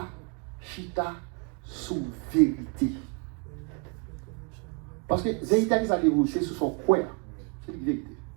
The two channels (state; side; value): quieter; left; 33.3 dB